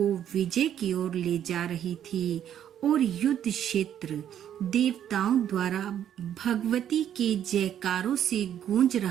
विजय की ओर ले जा रही थी और युद्ध क्षेत्र देवताओं द्वारा भगवती के जयकारों से गूंज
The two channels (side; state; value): left; quieter; 10.1 dB